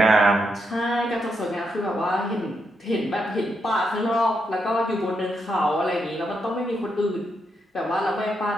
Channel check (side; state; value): both; normal; correlation 0.81